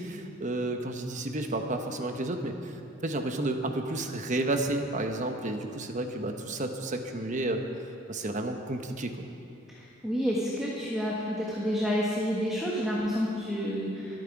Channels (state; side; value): normal; both; correlation 0.55